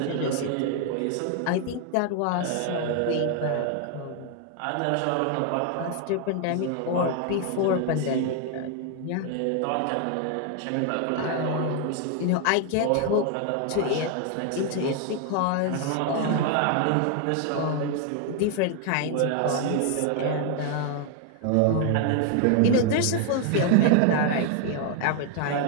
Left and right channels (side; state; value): both; different; correlation 0.00